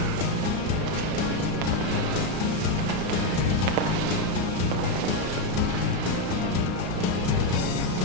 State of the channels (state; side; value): late; left; 33 ms